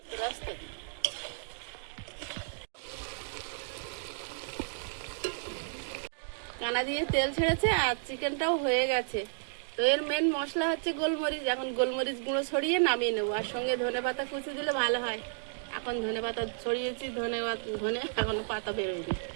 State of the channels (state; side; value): silent; left; digital silence